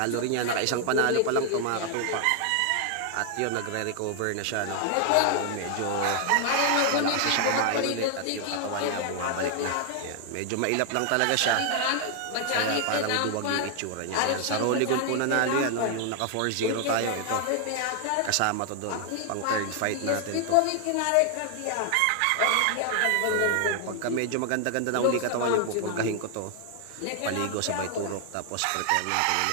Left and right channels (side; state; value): both; different; correlation 0.00